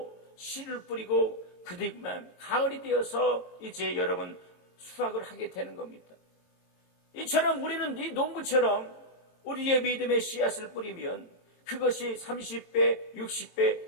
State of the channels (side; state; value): right; late; 22 ms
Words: 씨를 뿌리고 그뒤만 가을이 되어서 이제 여러분 수확을 하게 되는 겁니다. 이처럼 우리는 이 농부처럼 우리의 믿음의 씨앗을 뿌리면 그것이 30배,